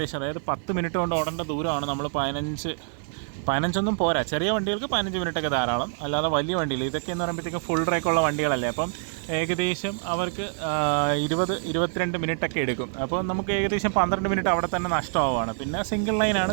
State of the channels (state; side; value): silent; left; digital silence